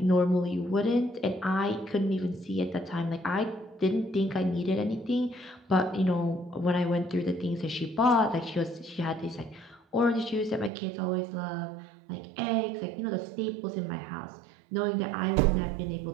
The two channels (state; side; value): drops out; left; at 10.7 s